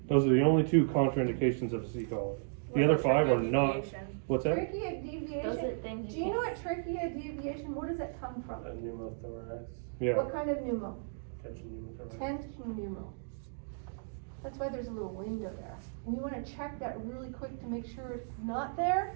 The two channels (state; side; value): silent; left; digital silence